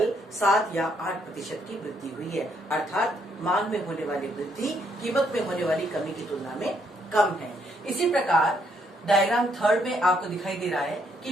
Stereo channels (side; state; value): both; normal; correlation 0.72